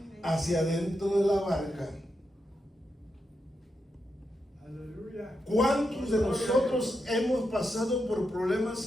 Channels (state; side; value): normal; both; correlation 0.85